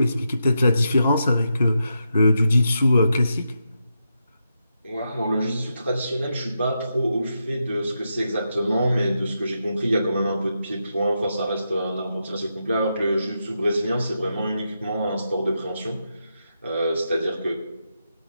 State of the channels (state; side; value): inverted; both; correlation -0.85